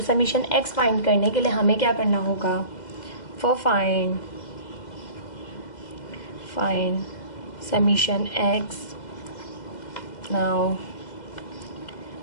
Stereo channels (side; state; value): right; late; 2.0 ms